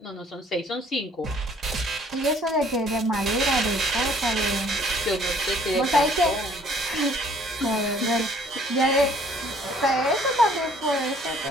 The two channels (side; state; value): both; normal; correlation 0.59